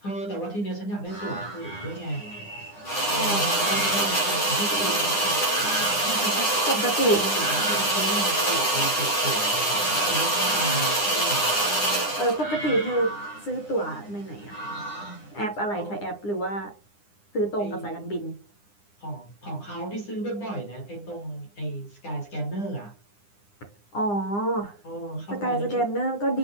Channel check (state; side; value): late; right; 9.8 ms